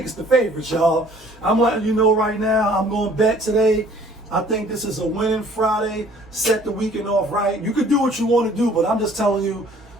it's the favorites, y'all. I'm letting you know right now. I'm going to bet today. I think this is a winning Friday. Set the weekend off right. You can do what you want to do, but I'm just telling you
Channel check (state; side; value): normal; both; correlation 0.55